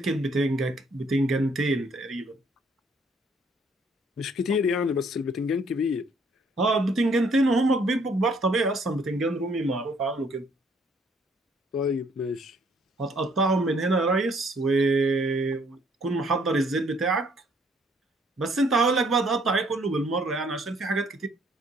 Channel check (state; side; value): normal; both; correlation 0.65